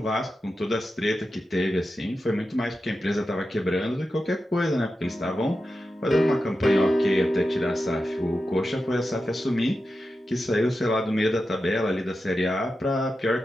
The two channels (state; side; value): normal; both; correlation 0.91